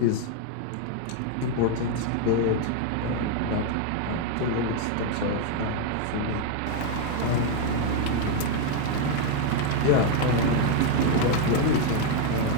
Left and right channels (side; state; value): both; different; correlation 0.01